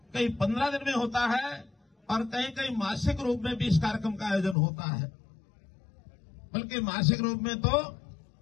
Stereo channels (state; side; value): drops out; right; at 4.5 s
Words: कहीं 15 दिन में होता है और कहीं कहीं मासिक रूप में भी इस कार्यक्रम का आयोजन होता है। बल्कि मासिक रूप में तो